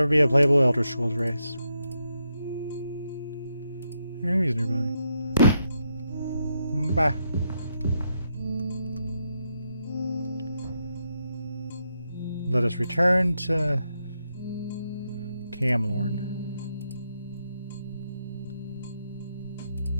be a playable Elder Scrolls race. There are enemies nearby. Bye. Let us return to Camlorn.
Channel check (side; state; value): both; inverted; correlation -0.81